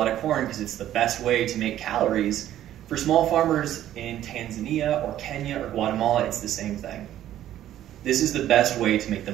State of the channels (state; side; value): quieter; left; 12.3 dB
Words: of corn because it's the best way to make calories, For small farmers in Tanzania or Kenya or Guatemala, it's the same thing. This is the best way to make the